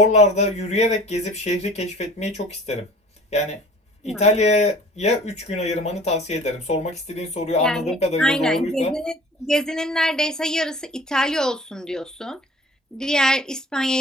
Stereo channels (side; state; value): both; normal; correlation 0.47